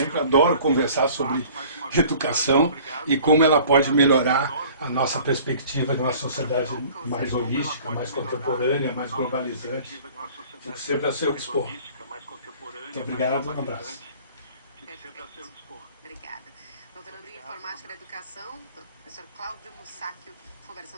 Adoro conversar sobre educação e como ela pode melhorar a nossa perspectiva de uma sociedade mais holística, mais contemporânea, mais globalizante. Fico sempre a seu dispor. Muito obrigado, um abraço. Obrigada. Doutorando em Informática da Educação, professor Cláudio Mussáquio,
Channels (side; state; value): both; inverted; correlation -0.49